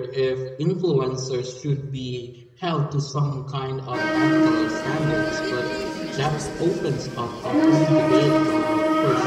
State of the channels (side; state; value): both; identical; correlation 1.00